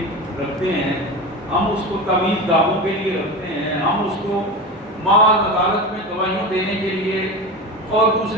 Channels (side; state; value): both; normal; correlation 0.26